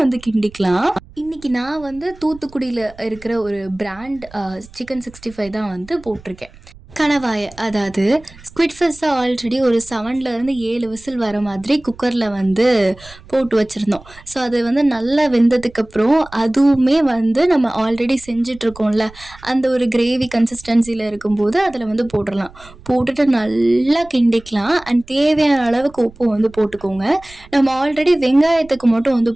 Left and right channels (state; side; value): noise; right; rumble, 22 dB below the sound